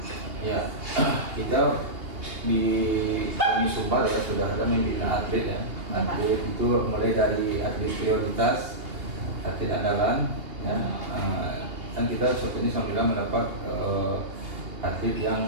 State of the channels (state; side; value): late; left; 2.8 ms